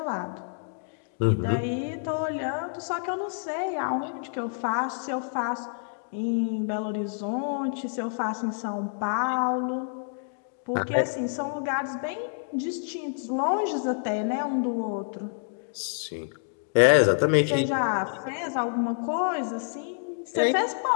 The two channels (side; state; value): right; silent; digital silence